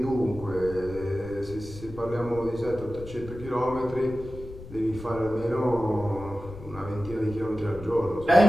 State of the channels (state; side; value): noise; left; rumble, 14 dB below the sound